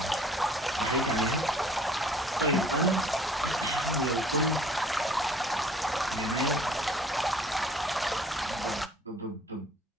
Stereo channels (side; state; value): both; normal; correlation 0.55